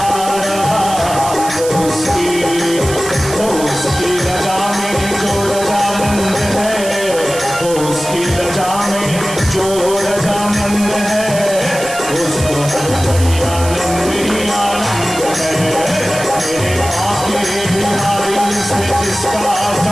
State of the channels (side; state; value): right; noise; hiss, 10 dB below the sound